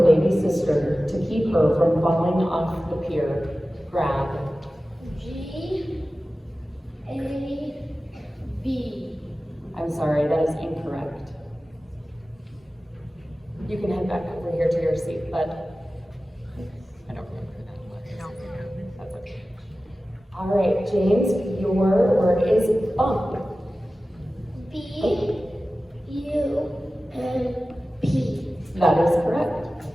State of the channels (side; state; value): both; normal; correlation 0.95